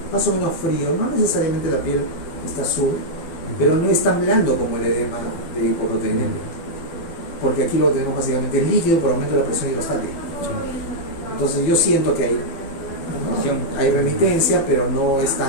más o menos frío, no necesariamente la piel está azul, pero no es tan blando como el edema de hipoproteinemia, porque aquí lo que tenemos básicamente es líquido por aumento de la presión hidrostática. Entonces yo siento que hay remitencia, pero no es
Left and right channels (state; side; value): late; right; 12 ms